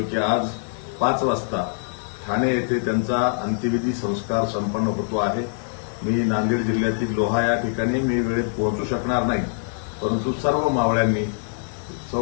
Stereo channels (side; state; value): right; silent; 62 dB below the other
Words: की आज 5 वाजता ठाणे येथे त्यांचा अंत्यविधी संस्कार संपन्न होतो आहे। मी नांदेड जिल्ह्यातील लोहा या ठिकाणी मी वेळेत पोहोचू शकणार नाही, परंतु सर्व मावळ्यांनी सौ